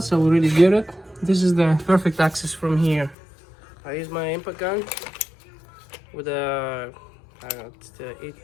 I already did it. This is the perfect access from here. I use my impact gun with a, I don't know, it's the 8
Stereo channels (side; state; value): right; drops out; at 3.2 s